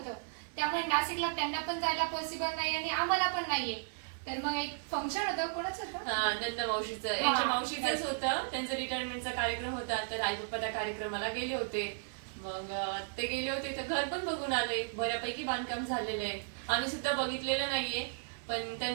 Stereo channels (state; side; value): silent; left; 55 dB below the other